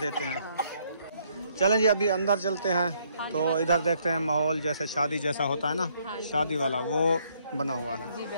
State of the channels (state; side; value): inverted; both; correlation -0.69